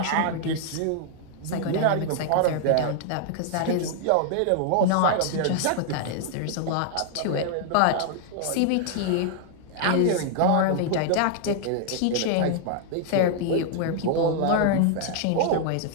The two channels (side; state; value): both; different; correlation 0.00